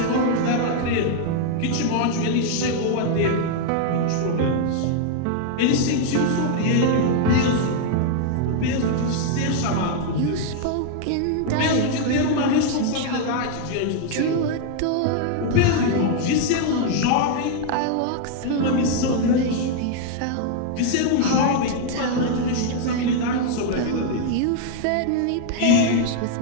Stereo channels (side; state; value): both; different; correlation 0.00